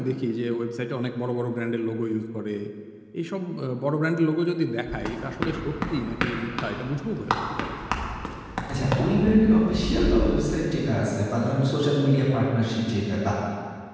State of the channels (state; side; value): identical; both; correlation 1.00